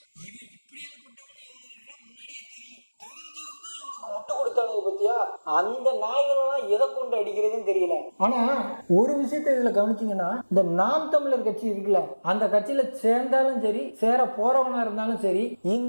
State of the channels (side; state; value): both; inverted; correlation -1.00